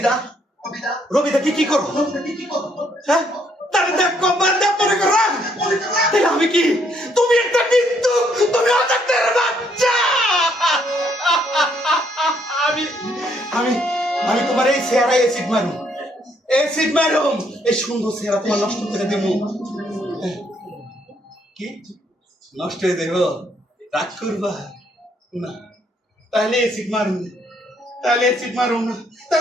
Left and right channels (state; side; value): normal; both; correlation 0.70